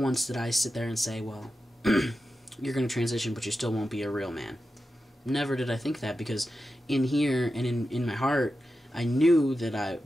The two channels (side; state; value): both; normal; correlation 0.91